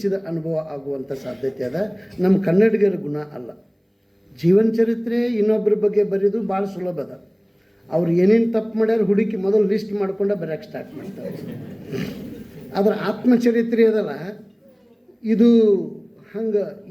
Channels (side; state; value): both; identical; correlation 1.00